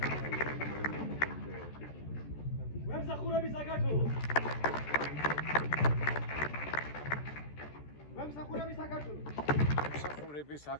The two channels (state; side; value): late; right; 14 ms